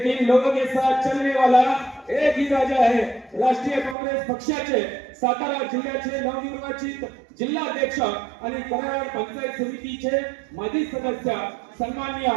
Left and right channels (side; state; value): left; drops out; at 4.0 s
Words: लोगों के साथ चलने वाला एक ही राजा है। राष्ट्रीय काँग्रेस पक्षाचे सातारा जिल्ह्याचे नवनिर्वाचित जिल्हाध्यक्ष आणि कराड पंचायत समितीचे माजी सदस्य सन्माननीय